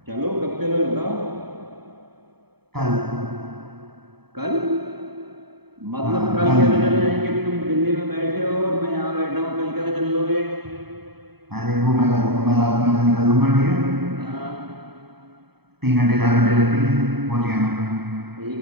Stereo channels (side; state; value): left; late; 0.97 ms